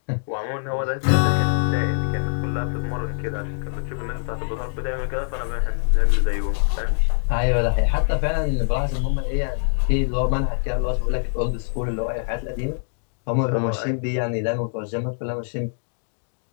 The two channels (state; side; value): silent; right; digital silence